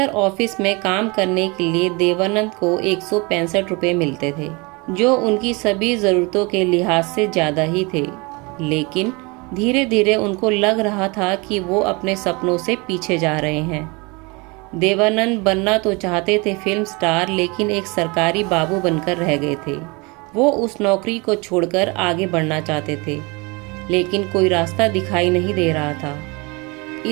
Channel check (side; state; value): left; quieter; 27.5 dB